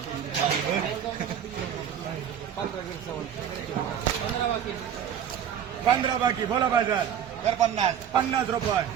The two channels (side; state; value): left; quieter; 9.0 dB